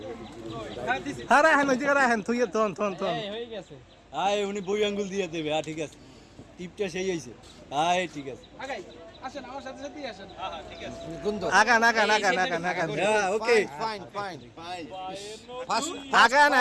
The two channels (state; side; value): identical; both; correlation 1.00